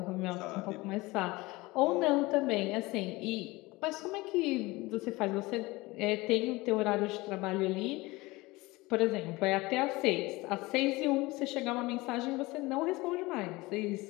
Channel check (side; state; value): right; quieter; 21.7 dB